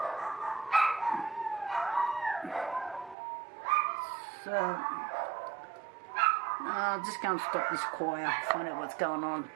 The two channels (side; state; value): left; drops out; at 3.2 s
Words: So I'll just go and stop this choir, find out what's going on.